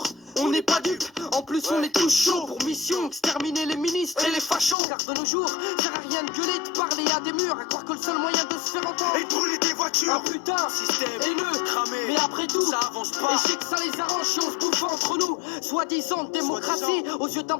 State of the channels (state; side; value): drops out; right; at 4.8 s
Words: On n'est pas dupes, en plus on est tous chauds pour mission exterminer les ministres et les fachos. Car de nos jours, sert à rien de gueuler, de parler à des murs, à croire que le seul moyen de se faire entendre Et de brûler des voitures. un putain Système haineux, cramé. mais après tout, Ça avance pas. et je sais que ça les arrange si on se bouffe entre nous. Soi-disant démocratie, aux yeux d'un